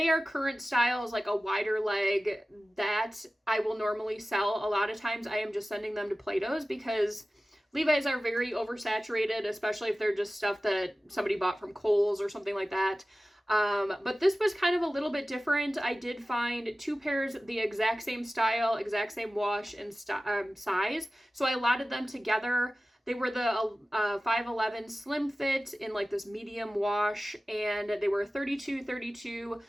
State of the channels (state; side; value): normal; both; correlation 0.96